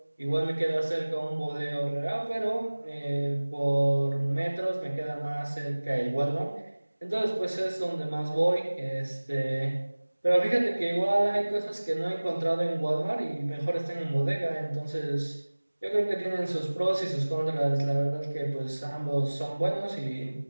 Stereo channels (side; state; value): both; inverted; correlation -1.00